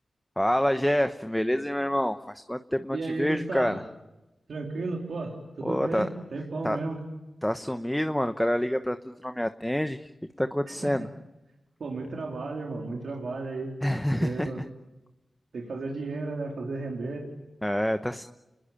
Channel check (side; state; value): both; normal; correlation 0.98